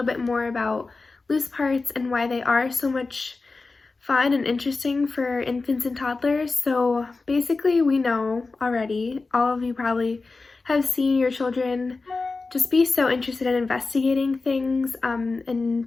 bit more about loose parts and why they are so much fun and interesting for infants and toddlers. So basically we know already, all of you probably have seen your children just be so interested in investigating things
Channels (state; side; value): quieter; right; 3.8 dB